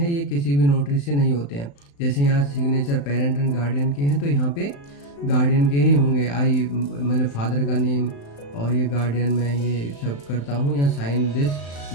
ये किसी भी नोटरी से नहीं होते हैं। जैसे यहाँ सिग्नेचर पेरेंट एंड गार्डियन के हैं तो यहाँ पे गार्डियन के ही होंगे, आई मतलब फादर का नेम, और ये गार्डियन मैं ये सब करता हूँ, या sign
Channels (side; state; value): right; late; 35 ms